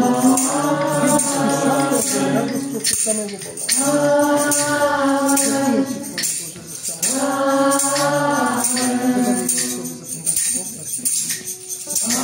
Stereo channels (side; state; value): both; identical; correlation 1.00